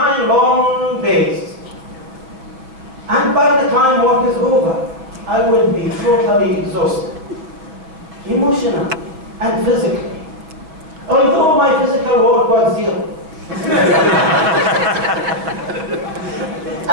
long days. And by the time work is over, I would be totally exhausted, emotionally and physically, although my physical work was 0.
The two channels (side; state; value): left; late; 6.3 ms